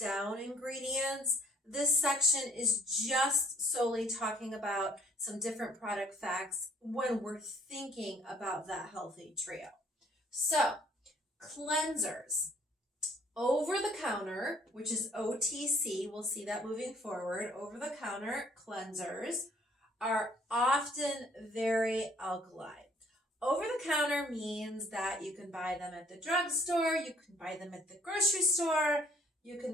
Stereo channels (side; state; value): both; normal; correlation 0.60